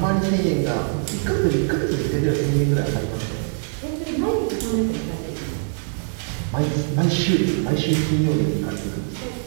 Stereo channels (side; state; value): left; silent; 61 dB below the other